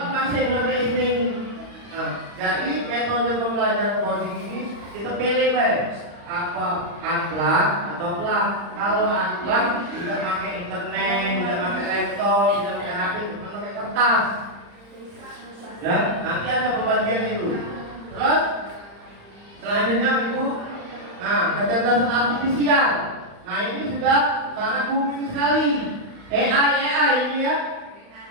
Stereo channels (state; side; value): late; left; 35 ms